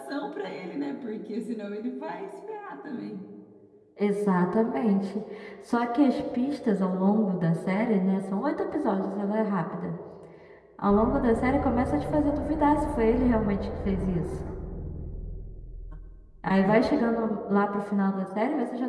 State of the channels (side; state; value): both; identical; correlation 1.00